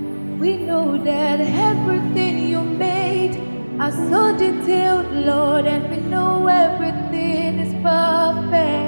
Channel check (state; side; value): inverted; both; correlation -1.00